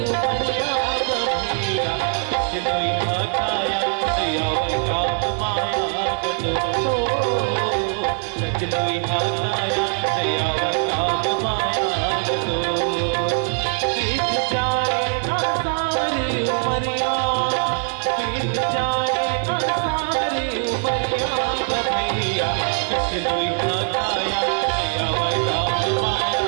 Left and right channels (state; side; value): silent; left; 61 dB below the other